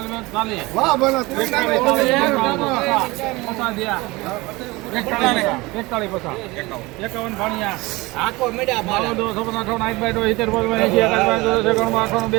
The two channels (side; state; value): left; quieter; 22.4 dB